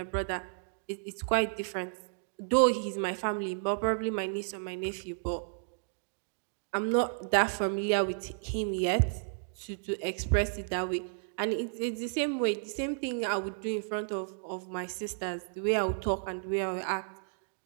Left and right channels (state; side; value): silent; left; digital silence